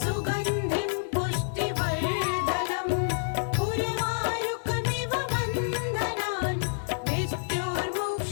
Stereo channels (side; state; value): right; silent; 59 dB below the other